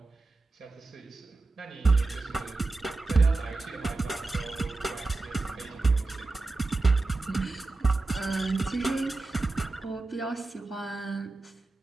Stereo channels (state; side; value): quieter; left; 3.3 dB